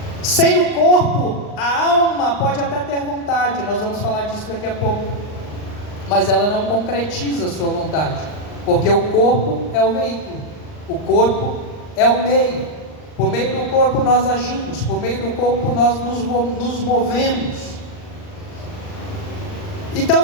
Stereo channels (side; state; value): right; late; 39 ms